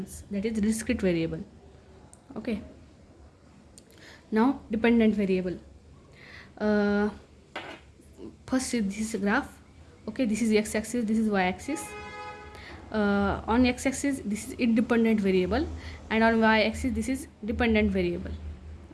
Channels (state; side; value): identical; both; correlation 1.00